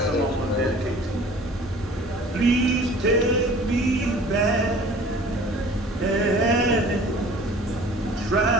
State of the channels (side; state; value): both; normal; correlation 0.47